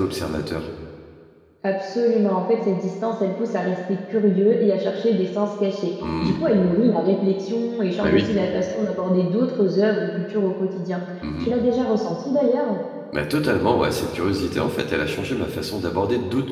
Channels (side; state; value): both; identical; correlation 1.00